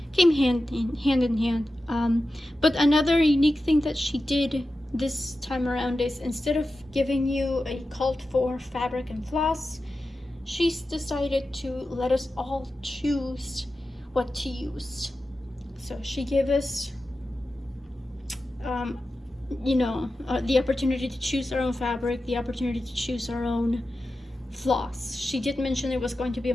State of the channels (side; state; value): both; normal; correlation 0.92